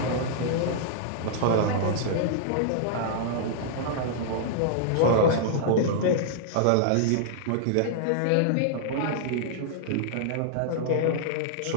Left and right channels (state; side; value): different; both; correlation -0.01